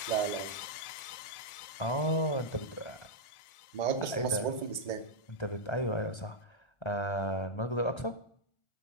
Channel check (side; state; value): right; late; 1.4 ms